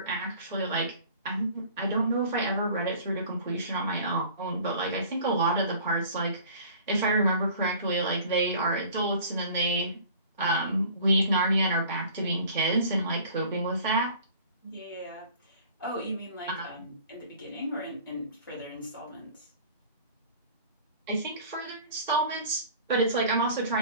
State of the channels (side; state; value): both; inverted; correlation -0.47